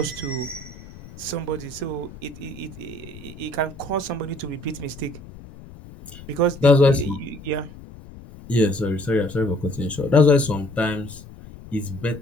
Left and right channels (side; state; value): left; noise; rumble, 17 dB below the sound